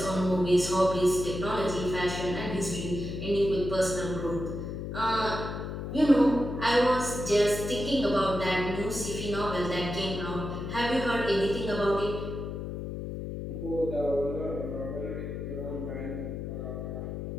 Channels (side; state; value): left; noise; hum, 6 dB below the sound